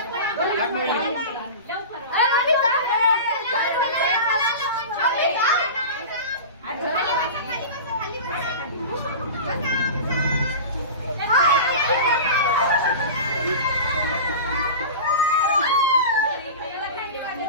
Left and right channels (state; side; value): inverted; both; correlation -0.30